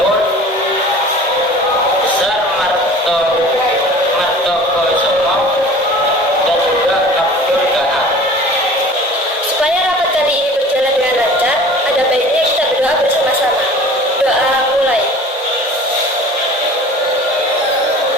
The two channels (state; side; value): normal; both; correlation 0.43